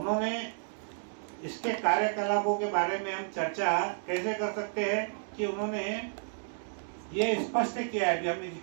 इसके कार्यकलापों के बारे में हम चर्चा कैसे कर सकते हैं कि उन्होंने ये स्पष्ट किया है कि हमने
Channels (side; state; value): left; silent; digital silence